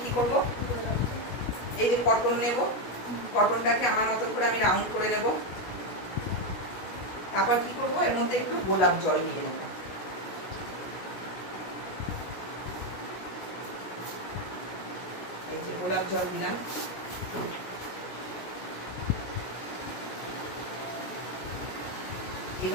কি করব, এই যে কটন নেব, কটনটাকে আমার মতন করে আমি রাউন্ড করে নেব। তারপর কি করব, এর মধ্যে একটু গোলাপ জল দিয়ে নেব। এই যে গোলাপ জল দিলাম।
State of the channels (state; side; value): late; right; 16 ms